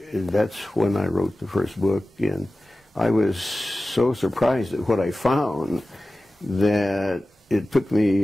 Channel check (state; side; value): normal; both; correlation 0.96